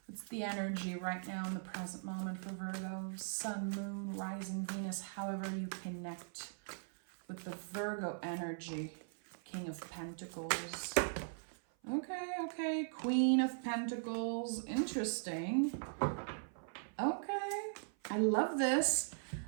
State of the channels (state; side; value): silent; left; 51 dB below the other